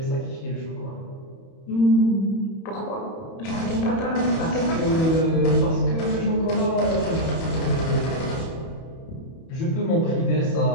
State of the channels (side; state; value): right; late; 31 ms